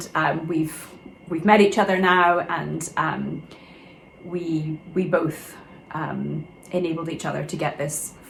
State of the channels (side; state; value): both; identical; correlation 1.00